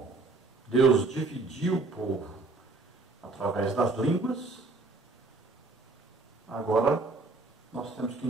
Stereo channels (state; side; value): quieter; left; 3.6 dB